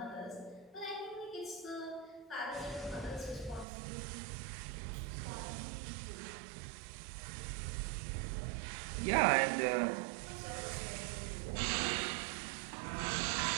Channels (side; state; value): left; drops out; at 3.7 s